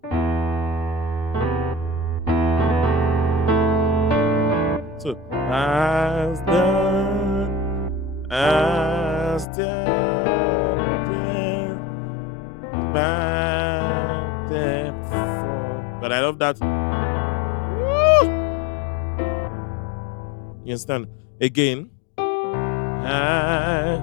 as the back that fall. But I love that. Woo! You understand? Again.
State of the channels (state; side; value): drops out; right; at 9.5 s